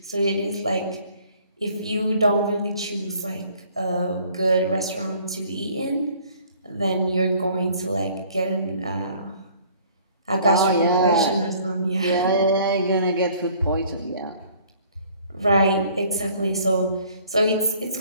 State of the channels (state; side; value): inverted; both; correlation -0.56